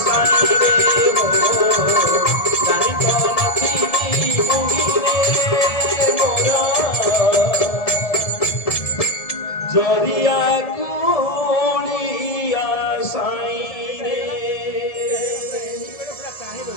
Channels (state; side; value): late; right; 1.7 ms